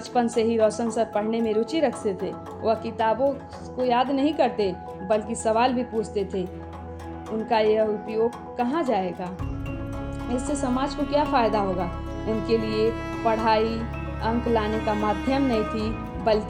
से ही रोशन सर पढ़ने में रुचि रखते थे। वह किताबों को याद नहीं करते, बल्कि सवाल भी पूछते थे। उनका यह उपयोग कहाँ जाएगा, इससे समाज को क्या फायदा होगा। उनके लिए पढ़ाई अंक लाने का माध्यम नहीं थी,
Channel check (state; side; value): identical; both; correlation 1.00